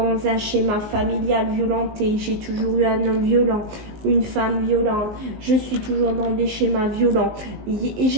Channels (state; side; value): late; left; 19 ms